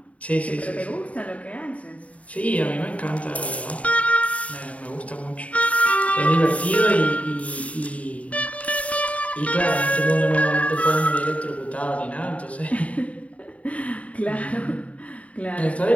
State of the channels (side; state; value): right; late; 0.067 ms